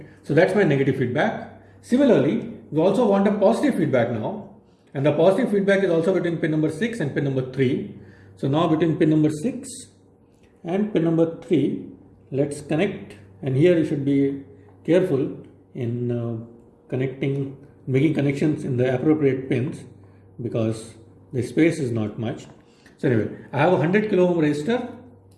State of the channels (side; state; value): both; identical; correlation 1.00